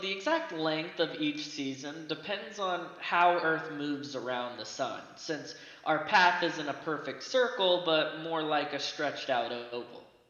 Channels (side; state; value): both; identical; correlation 1.00